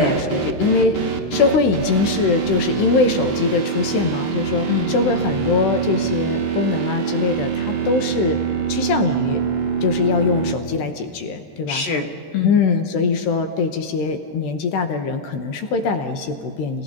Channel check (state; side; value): late; right; 13 ms